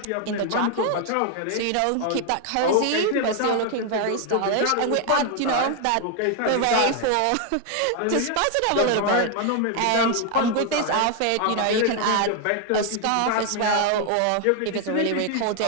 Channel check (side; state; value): both; different; correlation 0.00